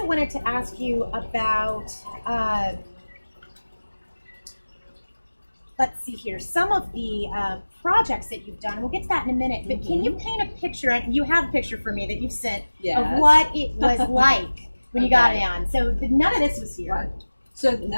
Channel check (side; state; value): both; inverted; correlation -1.00